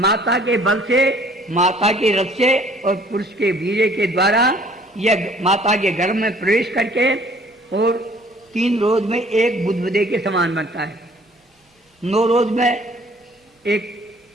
के बल से, माता के रस से और पुरुष के वीर्य के द्वारा यह माता के गर्भ में प्रवेश करके और 3 रोज में एक बुदबुदे के समान बनता है। 9 रोज में एक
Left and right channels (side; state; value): both; normal; correlation 0.56